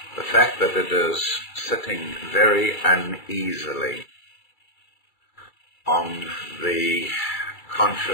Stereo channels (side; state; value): right; late; 2.3 ms